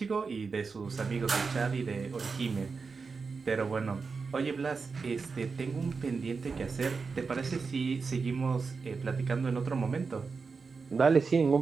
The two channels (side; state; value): left; quieter; 4.8 dB